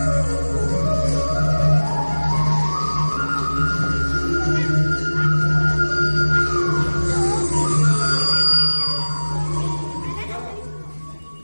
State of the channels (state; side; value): inverted; both; correlation -1.00